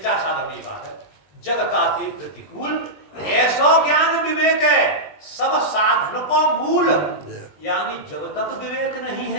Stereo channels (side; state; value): right; late; 20 ms